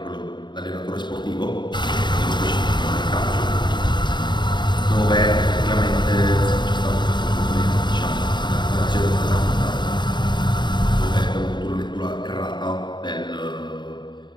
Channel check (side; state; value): right; late; 0.22 ms